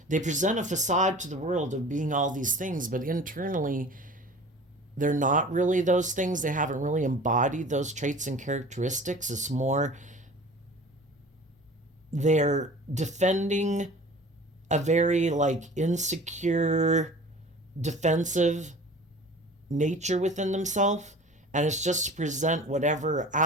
They present a facade to the world of being all these things, but internally they're not really those things. They haven't really embodied those traits and characteristics. It's more they're defending a very insecure, defensive nature within themselves, and it's just to present whatever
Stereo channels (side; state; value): both; normal; correlation 0.42